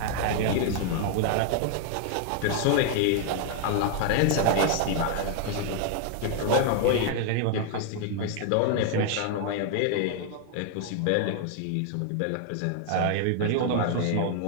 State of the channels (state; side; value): different; both; correlation 0.00